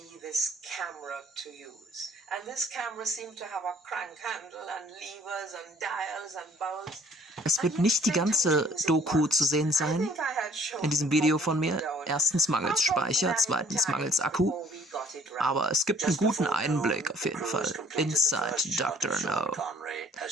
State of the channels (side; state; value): both; normal; correlation 0.58